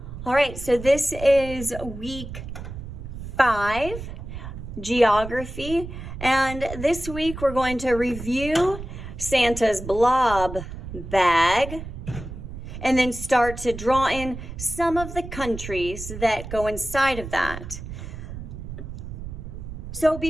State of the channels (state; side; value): noise; right; rumble, 10 dB below the sound